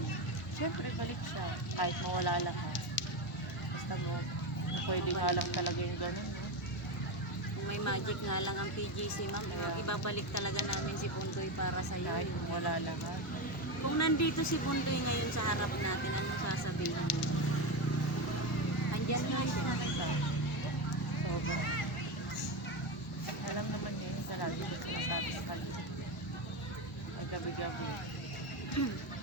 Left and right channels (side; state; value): both; normal; correlation 0.15